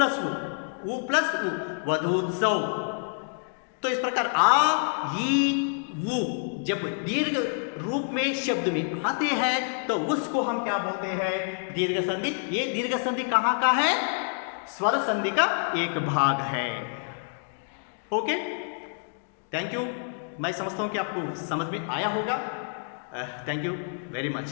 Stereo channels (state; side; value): silent; right; 60 dB below the other